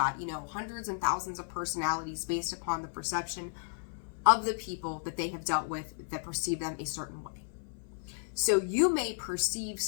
hundreds and thousands of personalities based upon the perception of the people that they have dealt with that perceive them a certain way. So you may perceive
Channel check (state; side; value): silent; right; 56 dB below the other